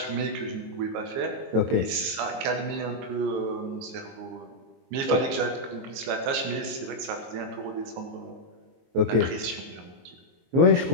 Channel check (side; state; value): left; late; 22 ms